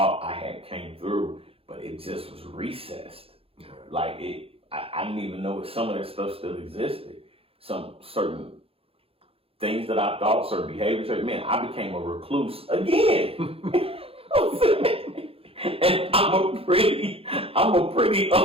I had came through, but it just was recessed. Like I didn't even know if some of that stuff still existed. Some certain things that I thought, certain behaviors, man, I became a recluse again. And I'm a pretty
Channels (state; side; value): late; left; 0.27 ms